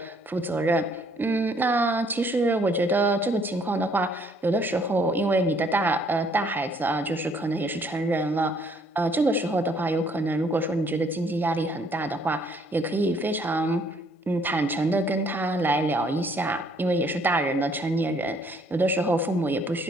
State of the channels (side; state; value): both; normal; correlation 0.64